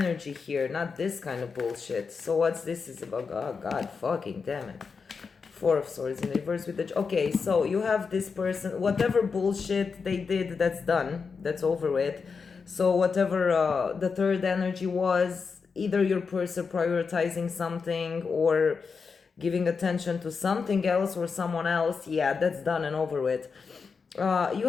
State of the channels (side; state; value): right; quieter; 5.3 dB